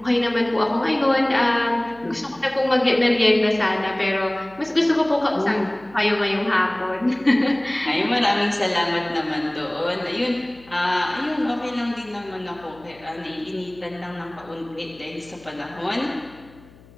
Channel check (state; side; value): noise; left; hum, 25 dB below the sound